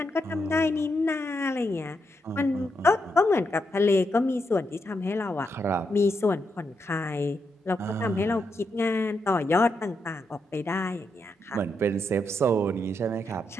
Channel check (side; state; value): both; normal; correlation 0.82